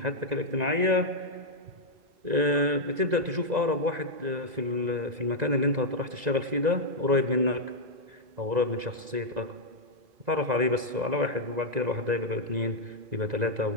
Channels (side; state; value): left; late; 1.9 ms